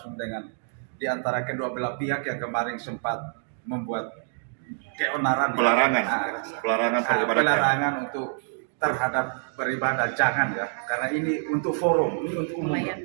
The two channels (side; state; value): left; silent; digital silence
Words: dengan di antara kedua belah pihak yang kemarin sempat membuat keonaran, pelarangan untuk terhadap beribadah, jangan ya, karena ini untuk forum, ini untuk umum.